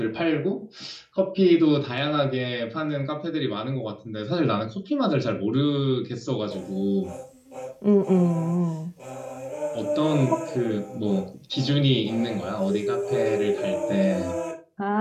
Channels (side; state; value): both; identical; correlation 1.00